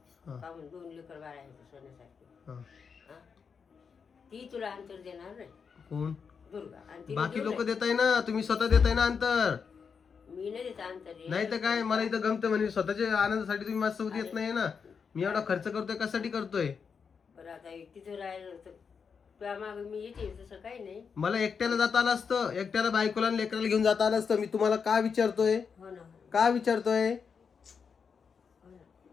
हा. का म्हणून 2 लेकर बाळ आहेत सोन्यासारखे हा. हा? ती तुला अंतर देणार नाही कोण दुर्गा आणि तिने बाकी देऊ लोक नाही. देताय ना, तुम्ही स्वतः देताय ना अंतर. मी नाही देत अंतर हे. नाही तर काय, मला इथं गमतं म्हणजे स्वतःच्या आनंदासाठी तुम्ही माझ्यासोबत येत नाही ना. मी एवढा खर्च करतोय कशासाठी करतोय? बरं आता तिथं राहिलं तर तुझ्या मागं मी येते तसं काही नाही. मला एकट्याला जाता आलं असतं, एकट्याला बायकोला आणि लेकराला घेऊन जाता आलं असतं. मी तुम्हाला का विचारतोय, हो ना का विचारतोय? हो ना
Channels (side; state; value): right; quieter; 6.1 dB